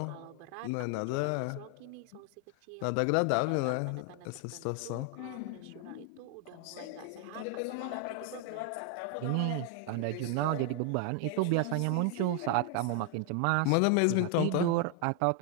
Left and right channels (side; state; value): both; different; correlation 0.00